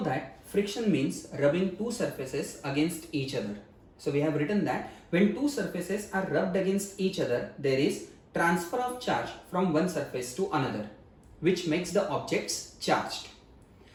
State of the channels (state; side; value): identical; both; correlation 1.00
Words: that friction means rubbing two surfaces against each other. So we have written that when two surfaces are rubbed against each other, there is transfer of charge from one surface to another, which makes the objects charged.